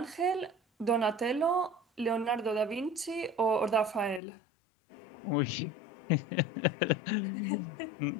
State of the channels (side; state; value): right; drops out; at 4.2 s